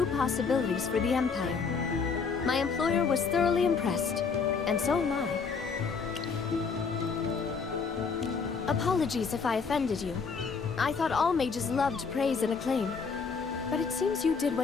possibilities for the Empire. My employer was thoroughly impressed, and so am I. Apologies if I offended you. I thought all mages loved praise and acclaim. But it seems you did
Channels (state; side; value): quieter; right; 5.3 dB